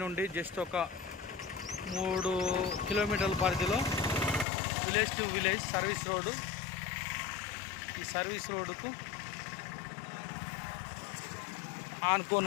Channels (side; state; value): right; drops out; at 4.5 s